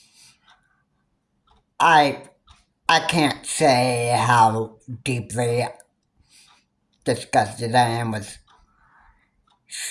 I I can't say how deeply disgusted I am with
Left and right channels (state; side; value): identical; both; correlation 1.00